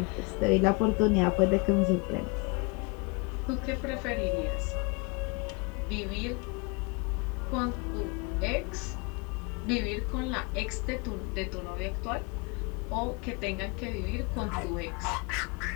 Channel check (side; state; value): right; quieter; 29.0 dB